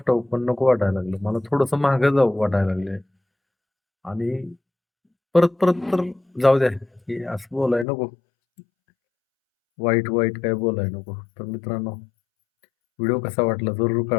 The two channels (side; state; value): right; drops out; at 7.9 s